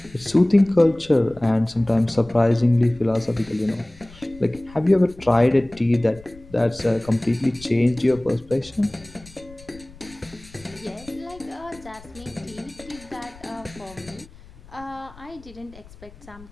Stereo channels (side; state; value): left; noise; rumble, 21 dB below the sound